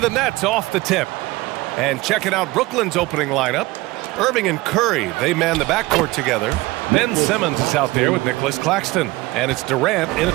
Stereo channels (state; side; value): quieter; left; 20.5 dB